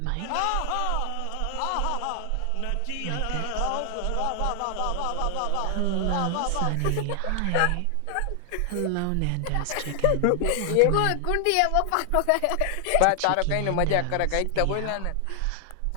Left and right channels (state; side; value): different; both; correlation 0.00